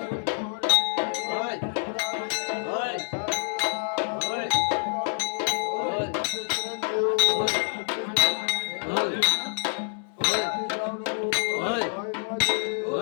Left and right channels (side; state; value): right; silent; digital silence